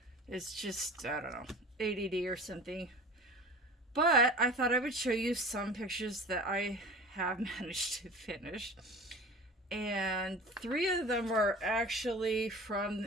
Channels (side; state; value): both; normal; correlation 0.38